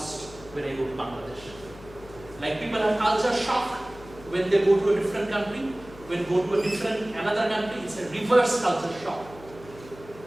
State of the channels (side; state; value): left; noise; hum, 19 dB below the sound